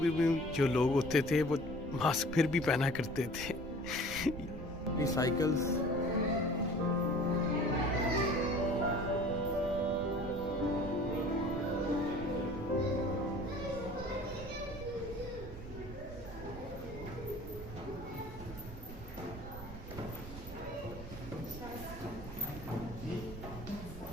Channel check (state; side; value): noise; right; rumble, 11 dB below the sound